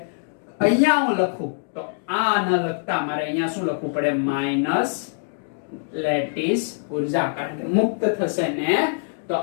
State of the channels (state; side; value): silent; right; digital silence